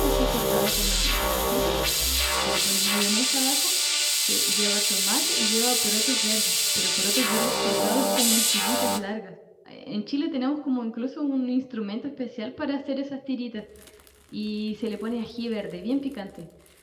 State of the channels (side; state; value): both; identical; correlation 1.00